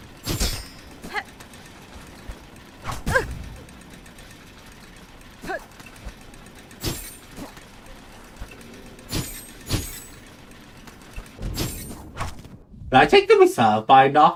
Did I take the reserve binder?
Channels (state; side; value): identical; both; correlation 1.00